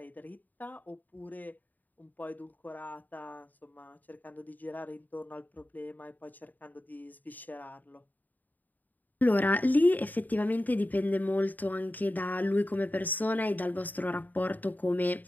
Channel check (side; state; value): right; late; 0.084 ms